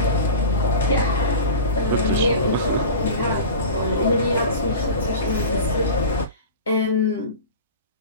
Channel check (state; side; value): inverted; both; correlation -0.33